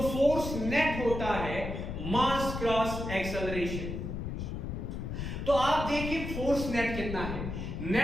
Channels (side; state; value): left; noise; rumble, 5 dB below the sound